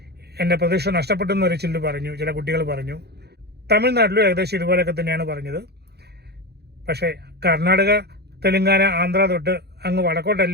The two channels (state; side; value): late; left; 0.48 ms